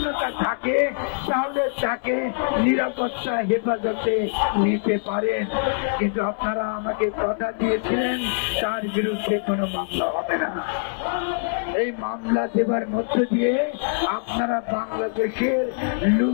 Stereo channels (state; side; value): silent; right; 63 dB below the other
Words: থাকে তাহলে তাকে নিরাপত্তা হেফাজতে নিতে পারেন, কিন্তু আপনারা আমাকে কথা দিয়েছিলেন তার বিরুদ্ধে কোনো মামলা হবে না। এই মামলা দেবার মধ্য দিয়ে আপনারা বাংলাদেশের